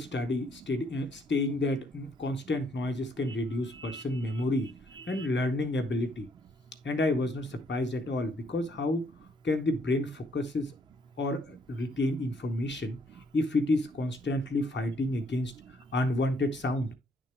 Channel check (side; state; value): both; normal; correlation 0.68